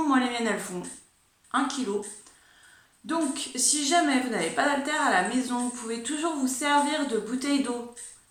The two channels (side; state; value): both; identical; correlation 1.00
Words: Moi les miennes elles font 1 kg. Donc si jamais vous n'avez pas d'haltères à la maison, vous pouvez toujours vous servir de bouteilles d'eau,